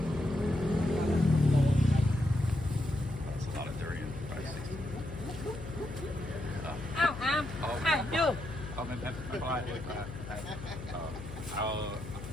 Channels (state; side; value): noise; left; hum, 11 dB below the sound